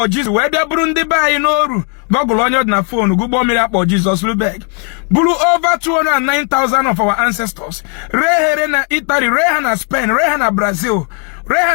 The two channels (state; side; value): quieter; right; 38.8 dB